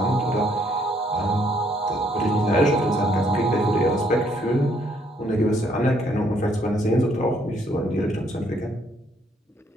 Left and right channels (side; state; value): both; normal; correlation 0.68